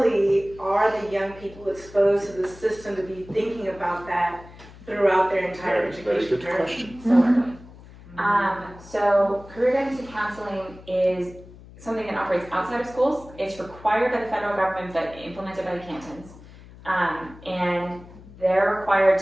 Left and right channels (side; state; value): left; noise; hum, 20 dB below the sound